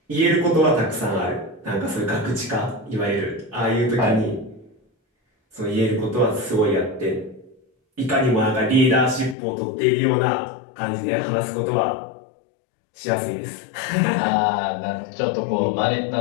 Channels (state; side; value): drops out; right; at 9.3 s